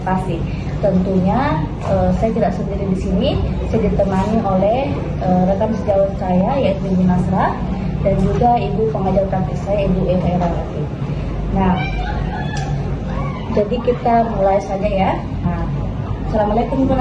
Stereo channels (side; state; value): both; identical; correlation 1.00